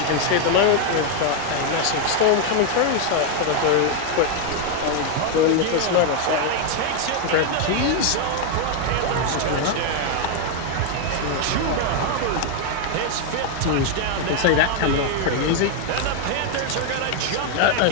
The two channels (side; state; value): both; different; correlation 0.01